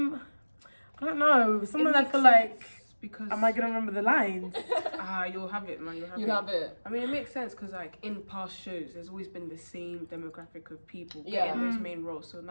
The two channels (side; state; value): both; inverted; correlation -1.00